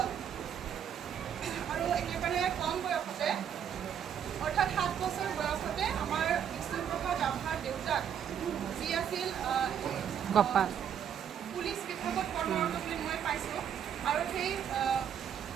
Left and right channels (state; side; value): quieter; left; 8.8 dB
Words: আৰু একেবাৰে কম বয়সতে অৰ্থাৎ 7 বছৰ বয়সতে আমাৰ বিষ্ণুপ্ৰসাদ ৰাভাৰ দেউতাক যি আছিল পুলিচ বিভাগত কৰ্মৰত বুলি মই পাইছোঁ আৰু সেই